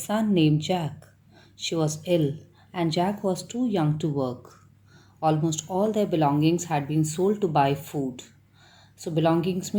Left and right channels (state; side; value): identical; both; correlation 1.00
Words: named Jack. She was ill, and Jack was too young to work. Almost all their belongings had been sold to buy food. So, belongings